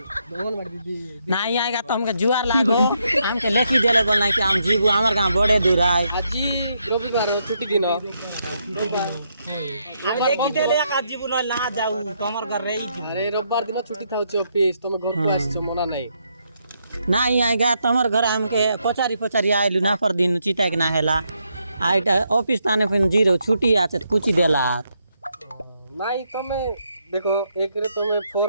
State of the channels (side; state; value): both; inverted; correlation -0.78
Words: অঙ্গনবাড়ি দিদি नहीं आएगा तो हमके जुआर लागो हमके लेखी देले बोल नहीं कि हम जीबू हमर गांव बड़े दूर आए আজি রবিবার ছুটি দিন আমি দেখি দেলে এক জীবন না যাও তোমার ঘর রেই জীবন আরে রবিবার দিন ছুটি থাকছে অফিস তুমি ঘরକୁ আসছো মনা নাই नहीं आएगा तमर घर हमके पचारी पचारी आइलु ना पर दिन चिता के ना हेला आइटा ऑफिस ताने फिन जीरो छुट्टी आछे तो कुछ देला নাই তুমি দেখো একরে তুমি